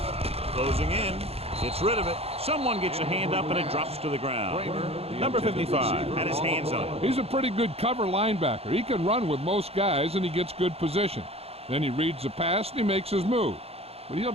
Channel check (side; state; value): left; late; 0.29 ms